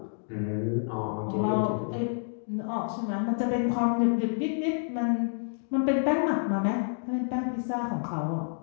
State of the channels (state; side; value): silent; right; digital silence